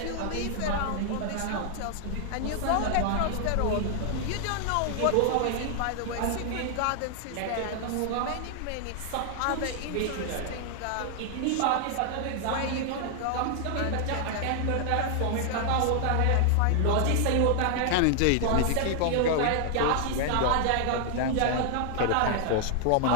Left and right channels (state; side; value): different; both; correlation 0.00